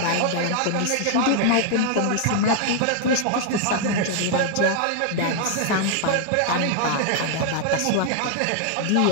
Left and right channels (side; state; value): both; different; correlation 0.00